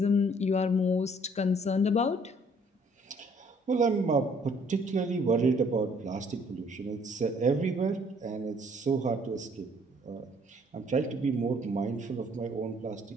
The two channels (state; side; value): normal; both; correlation 0.61